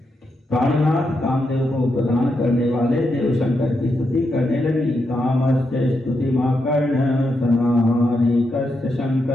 प्राणनाथ कामदेव को प्रदान करने वाले देव शंकर की स्तुति करने लगी। कामस्य स्तुतिमाकर्ण सनारिकस्य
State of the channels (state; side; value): normal; both; correlation 0.83